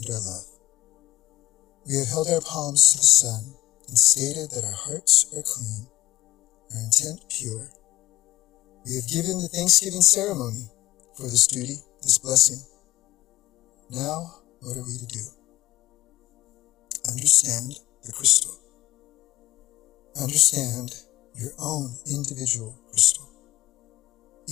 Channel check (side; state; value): right; quieter; 16.6 dB